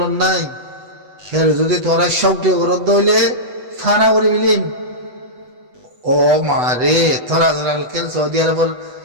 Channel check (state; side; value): late; left; 8.1 ms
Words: নাই সে যদি তোরা সবটি গরদ হইলে ফানা করে বিলিম ও মারে তোরা কেন সৌদি আরবের